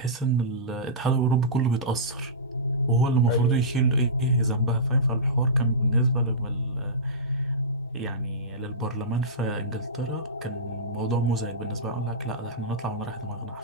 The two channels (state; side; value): normal; both; correlation -0.18